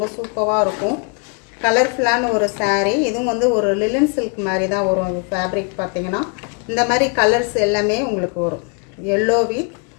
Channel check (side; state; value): right; quieter; 37.3 dB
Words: சூப்பராக இருக்கும். கலர்ஃபுல்லான ஒரு சாரீ. இதுவும் வந்து ஒரு லிலன் சில்க் மாதிரி தான் வரும். ஃபேப்ரிக் பார்த்திங்கன்னா இந்த மாதிரி கலர்ஸ் எல்லாமே உங்களுக்கு வரும். எல்லோ வித்